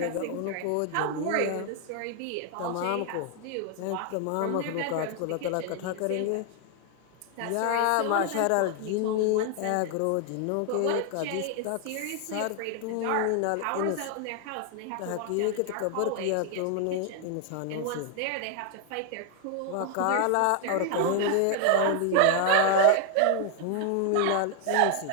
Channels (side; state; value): both; different; correlation 0.00